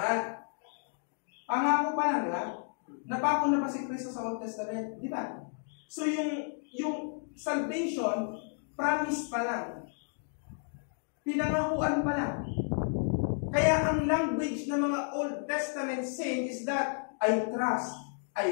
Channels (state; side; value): silent; right; 56 dB below the other